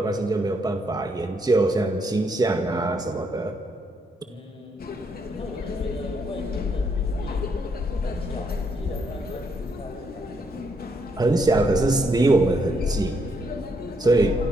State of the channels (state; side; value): normal; both; correlation 0.75